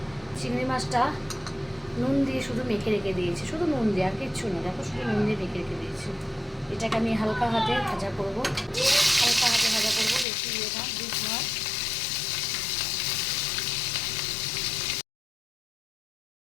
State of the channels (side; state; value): right; drops out; at 10.2 s